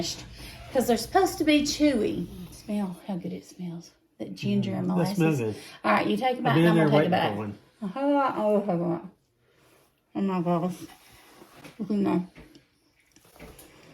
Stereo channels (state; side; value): identical; both; correlation 1.00